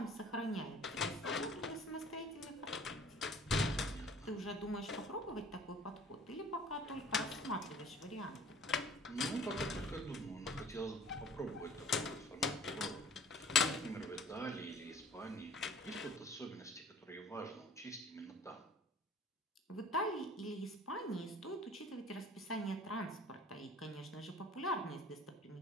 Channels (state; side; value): normal; both; correlation 0.49